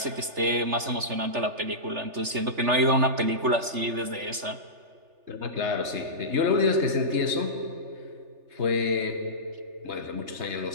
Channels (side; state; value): left; late; 3.4 ms